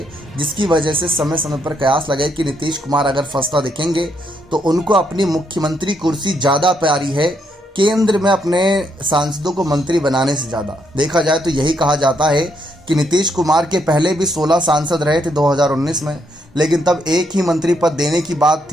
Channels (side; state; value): both; normal; correlation 0.75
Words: जिसकी वजह से समय समय पर कयास लगे कि नीतीश कुमार अगर फंसता दिखेंगे तो उनको अपनी मुख्यमंत्री कुर्सी ज़्यादा प्यारी है, केंद्र में अपने सांसदों को मंत्री बनाने से ज़्यादा। देखा जाए तो यही कहा जाता है कि नीतीश कुमार के पहले भी 16 सांसद रहे थे 2019 में, लेकिन तब एक ही मंत्री पद देने की बात